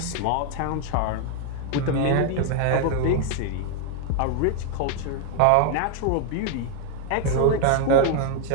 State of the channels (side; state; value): both; different; correlation 0.00